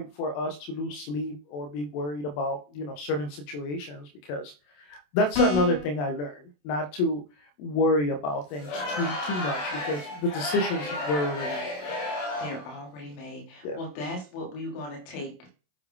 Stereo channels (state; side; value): late; right; 27 ms